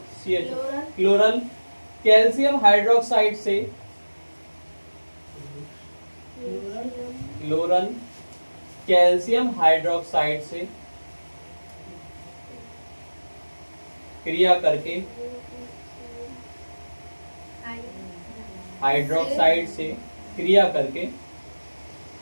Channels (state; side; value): inverted; both; correlation -1.00